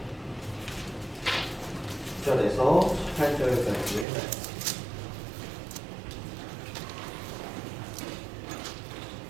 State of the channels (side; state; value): left; drops out; at 4.0 s